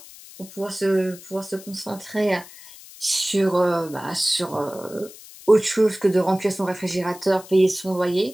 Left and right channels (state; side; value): noise; left; hiss, 19 dB below the sound